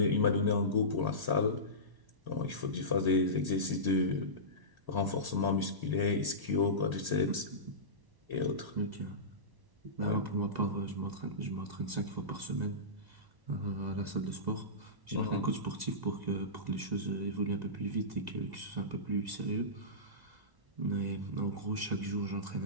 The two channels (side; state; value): left; late; 1.0 ms